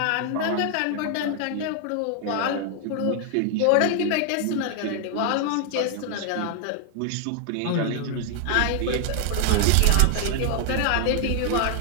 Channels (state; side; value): different; both; correlation 0.00